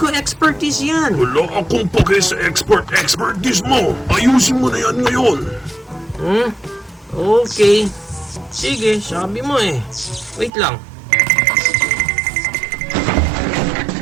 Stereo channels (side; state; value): left; drops out; at 10.5 s